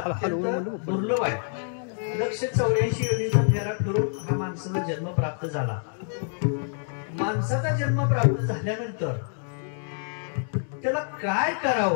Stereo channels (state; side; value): silent; right; digital silence